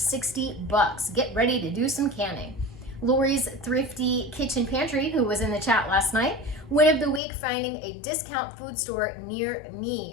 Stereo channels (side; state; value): right; drops out; at 7.2 s